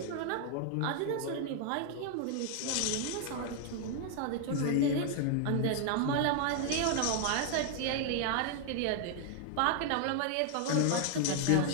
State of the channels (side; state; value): both; different; correlation 0.00